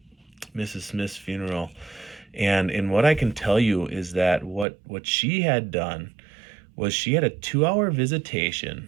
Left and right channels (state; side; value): drops out; left; at 4.7 s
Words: Mrs. Smith's funeral, and what I can tell you is that what she had done was she had a 2 hour visitation.